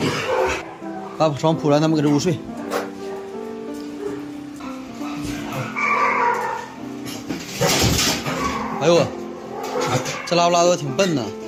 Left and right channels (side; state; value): both; identical; correlation 1.00